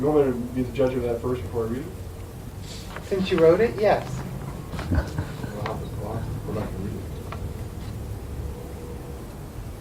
be the judge of that first before I read it? Since you wrote it, yes. I'll have to go back and read it.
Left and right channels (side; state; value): both; identical; correlation 1.00